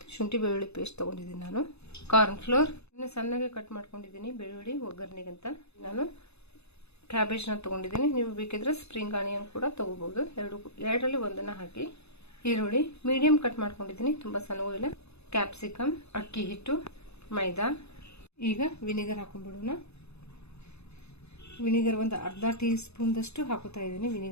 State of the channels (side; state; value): right; late; 0.80 ms